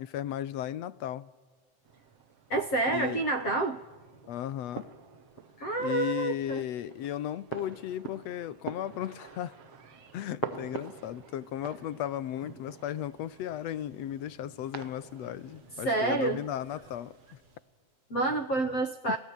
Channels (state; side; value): late; right; 7.6 ms